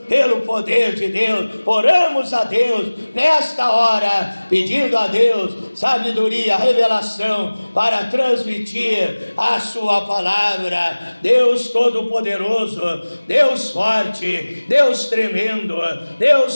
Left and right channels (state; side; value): inverted; both; correlation -1.00